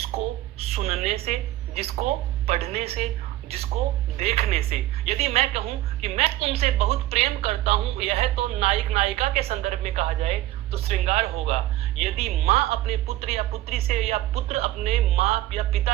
सुनने से, जिसको पढ़ने से, जिसको देखने से, यदि मैं कहूं कि मैं तुमसे बहुत प्रेम करता हूं, यह तो नायक नायिका के संदर्भ में कहा जाए तो श्रृंगार होगा। यदि माँ अपने पुत्र या पुत्री से, या पुत्र अपने माँ या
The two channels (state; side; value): quieter; left; 15.1 dB